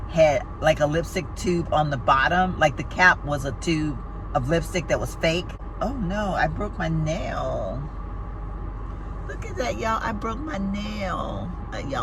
had like a lipstick tube on the bottom. Like the cap was a tube of lipstick that was fake. Oh no, I broke my nail. Look at that, y'all. I broke my nail.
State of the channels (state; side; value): identical; both; correlation 1.00